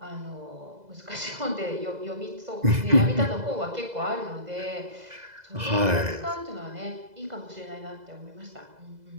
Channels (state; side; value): late; left; 2.0 ms